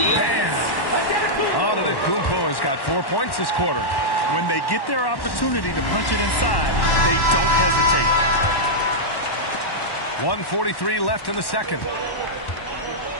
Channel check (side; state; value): right; late; 1.1 ms